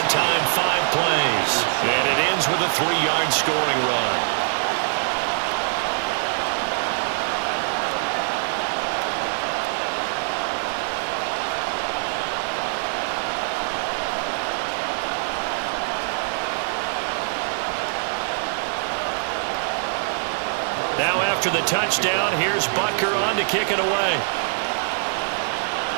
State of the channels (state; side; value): silent; left; 63 dB below the other